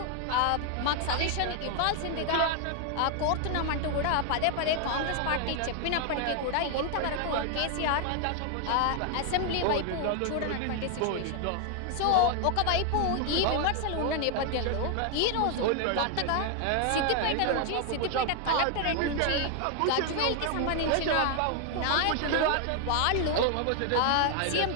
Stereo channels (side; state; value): both; different; correlation 0.00